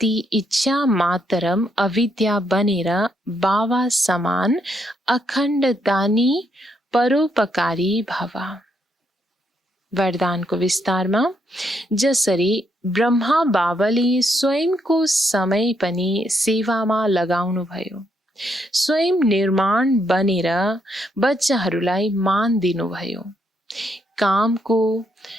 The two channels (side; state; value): both; normal; correlation 0.76